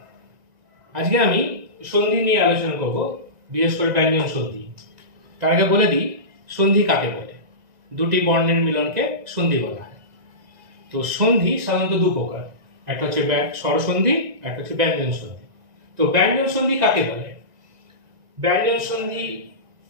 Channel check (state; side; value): late; left; 1.9 ms